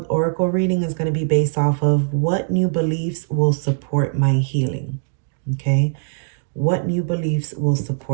oracle reading is going to be based off of what new beliefs will support my healing. Okay, what new beliefs will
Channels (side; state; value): left; silent; digital silence